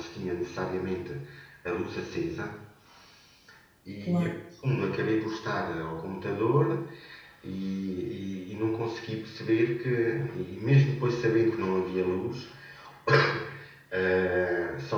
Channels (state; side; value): identical; both; correlation 1.00